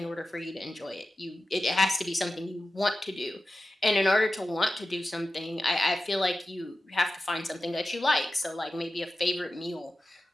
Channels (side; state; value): both; normal; correlation 0.93